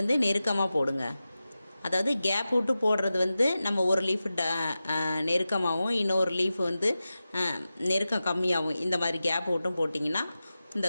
நெருக்கமாக போடுங்க. அதாவது கேப் விட்டு போடுறது வந்து நம்ம ஒரு லீஃப் நெருக்கமாகவும் இன்னொரு லீஃப் வந்து நெருக்கம் கம்மியாகவும் இந்த மாதிரி கேப் விட்டும் போட்டிங்கன்னா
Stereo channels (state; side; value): inverted; both; correlation -0.94